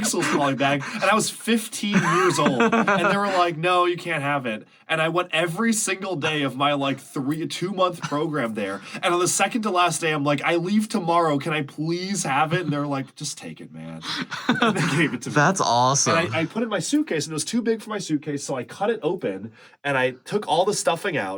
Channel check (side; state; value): both; identical; correlation 1.00